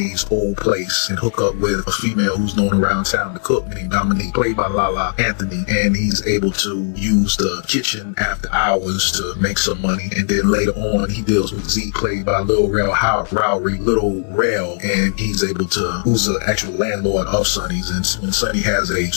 old place and hook up with a female who's known around town to cook, named Dominique, played by Lala Anthony, and he's able to use the kitchen after hours to make some money. And then later on, he deals with Zeke, played by Lil Rel Howery, Little Rel, and he's able to, who's the actual landlord of Sonny's. And when Sonny has a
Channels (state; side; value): silent; right; digital silence